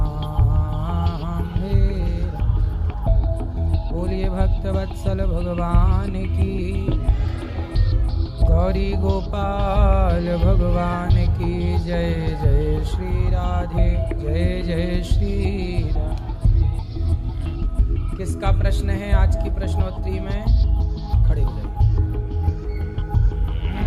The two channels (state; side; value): identical; both; correlation 1.00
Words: मेरा बोलिए भक्त वत्सल भगवान की, गौरी गोपाल भगवान की जय। जय श्री राधे, जय जय श्री राधे। किसका प्रश्न है आज की प्रश्नोत्तरी में? खड़े हो जाइए।